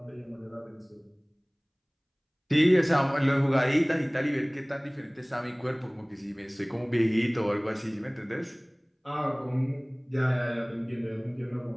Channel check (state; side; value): identical; both; correlation 1.00